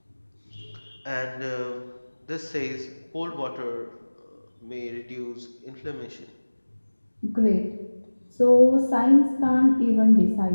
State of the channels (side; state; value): both; inverted; correlation -1.00